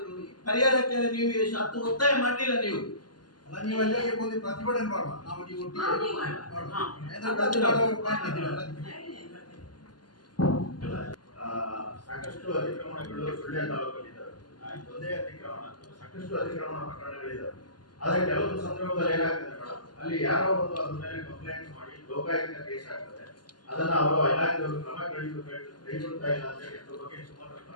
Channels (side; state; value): right; late; 0.70 ms